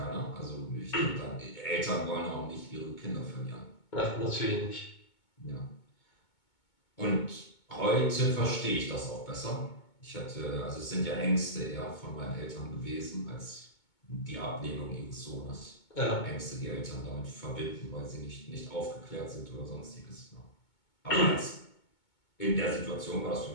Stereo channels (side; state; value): right; late; 2.2 ms